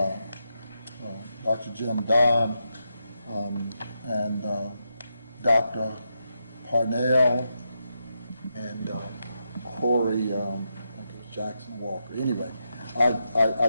Dr. Jim Don, and Dr. Parnell, and Corey, I think it was Jackson Walker. Anyway,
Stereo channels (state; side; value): inverted; both; correlation -0.84